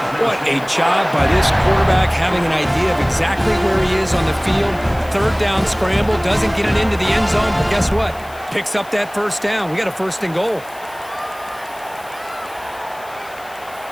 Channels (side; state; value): left; noise; hiss, 22 dB below the sound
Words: What a job by this quarterback having an idea of exactly where he is on the field. Third down scramble, doesn't get it into the end zone, but guess what? Picks up that first down. We got a first and goal.